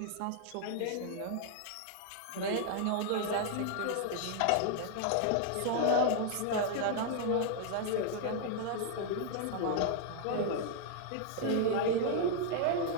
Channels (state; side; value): different; both; correlation 0.00